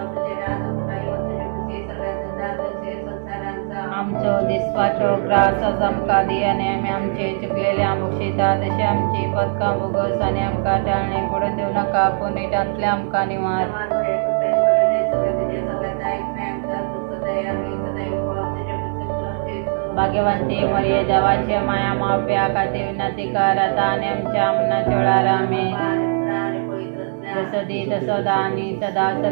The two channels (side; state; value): left; silent; digital silence